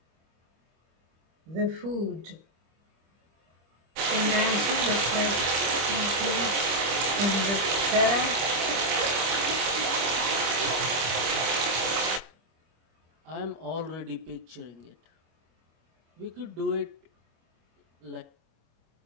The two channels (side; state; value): left; late; 25 ms